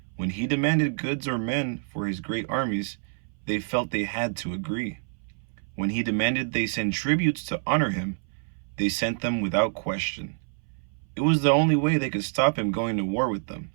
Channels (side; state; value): left; silent; 60 dB below the other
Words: When he demanded goods or men for his great armies, they felt they had to agree. When he demanded they send tributes to honor him, they sent them without question. It was the only way they could stop him going to war with them.